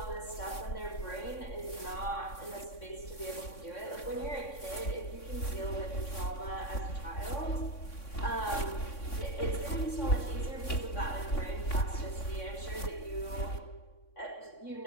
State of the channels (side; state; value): right; late; 3.6 ms